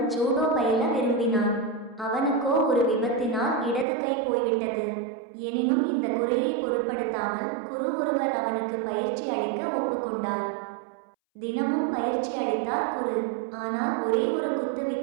ஜூடோ பயில விரும்பினான். அவனுக்கோ ஒரு விபத்தினால் இடது கை போய்விட்டது. எனினும் இந்த குறையை பொருட்படுத்தாமல் குரு ஒருவர் அவனுக்கு பயிற்சி அளிக்க ஒப்புக்கொண்டார். தினமும் பயிற்சி அளித்தார் குரு. ஆனால் ஒரே ஒரு குத்து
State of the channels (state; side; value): drops out; left; at 3.9 s